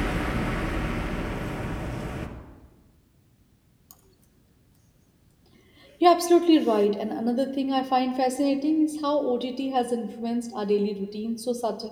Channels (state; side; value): identical; both; correlation 1.00